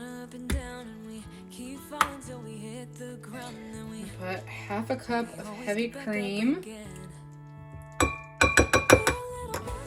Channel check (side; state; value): both; identical; correlation 1.00